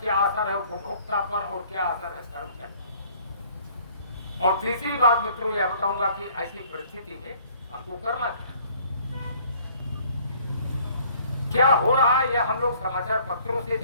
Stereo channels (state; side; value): inverted; both; correlation -0.57